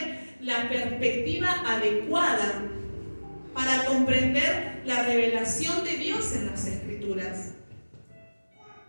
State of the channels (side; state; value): both; inverted; correlation -1.00